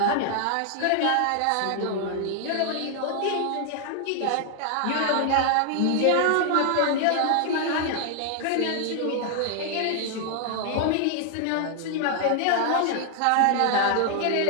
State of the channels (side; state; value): both; different; correlation 0.00